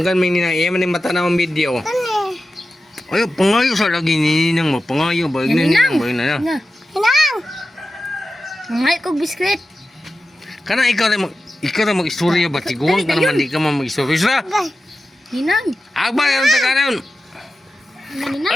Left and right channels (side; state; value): both; normal; correlation 0.93